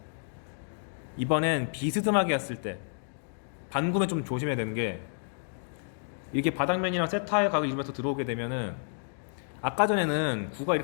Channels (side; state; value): right; silent; digital silence